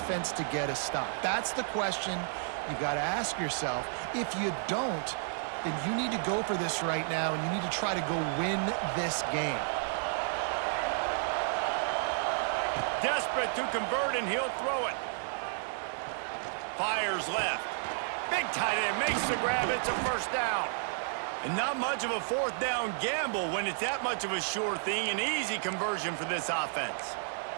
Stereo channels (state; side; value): silent; left; digital silence